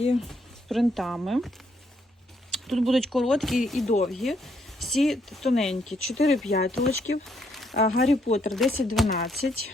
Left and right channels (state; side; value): normal; both; correlation 0.73